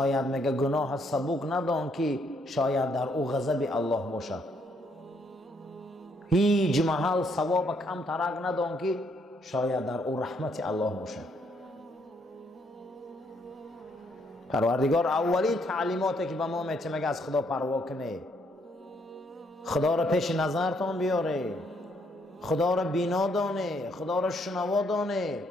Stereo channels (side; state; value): both; normal; correlation 0.71